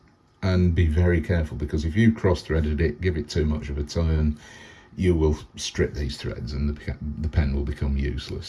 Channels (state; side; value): identical; both; correlation 1.00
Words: And be very careful, because if you cross-threaded it, give it too much of a turn, you will strip these threads and the pen will become useless.